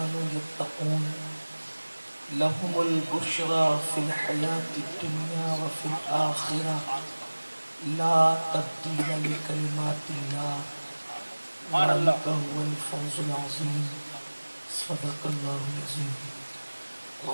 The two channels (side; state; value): both; inverted; correlation -1.00